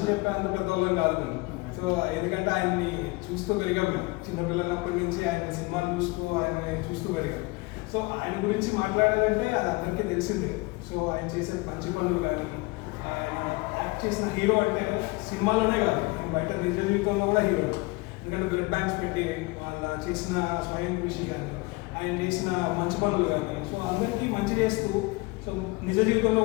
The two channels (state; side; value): quieter; right; 24.3 dB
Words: చెప్పే అంత పెద్దవాళ్ళం కాదు మేము. సో ఎందుకంటే ఆయన్ని చూస్తూ పెరిగాం మేము, చిన్నపిల్లలప్పటి నుంచి ఆయన సినిమాలు చూస్తూ పెరిగాం. సో ఆయన గురించి మాట్లాడాలంటే అది అందరికీ తెలిసిందే. సో ఆయన చేసే మంచి పనులు కానీ, ఆయన యాక్ట్ చేసిన హీరో అంటే సినిమాలోనే కాదు, బయట నిజ జీవితంలో కూడా హీరో. ఎందుకంటే బ్లడ్ బ్యాంక్స్ పెట్టి వాళ్ళ చేసిన స్వయం కృషి కానీ, ఆయన చేసిన మంచి పనులు కానీ, సో అందరికీ మంచి చేస్తూ సో నిజ జీవితంలో